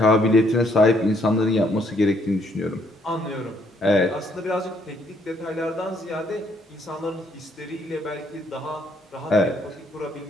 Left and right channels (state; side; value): normal; both; correlation 0.69